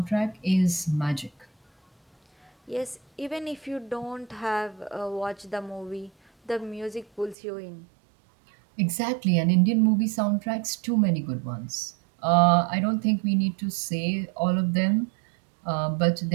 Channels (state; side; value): drops out; left; at 7.4 s